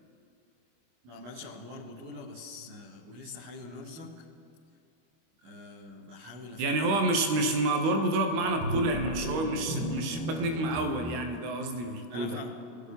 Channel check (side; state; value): left; late; 25 ms